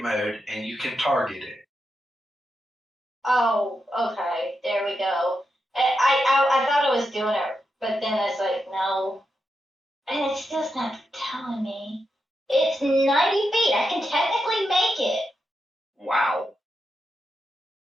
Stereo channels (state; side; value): normal; both; correlation 0.86